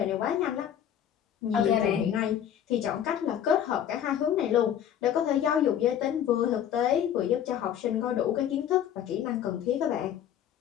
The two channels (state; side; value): quieter; right; 9.9 dB